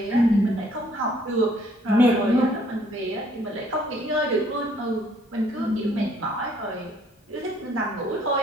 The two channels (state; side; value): normal; both; correlation 0.62